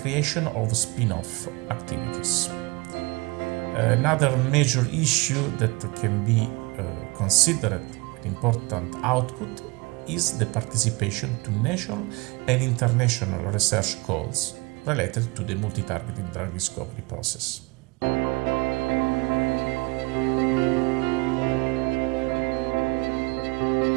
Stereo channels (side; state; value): left; quieter; 25.1 dB